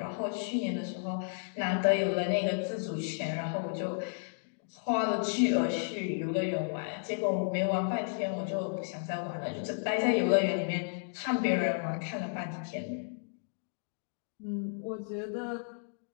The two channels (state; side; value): silent; right; digital silence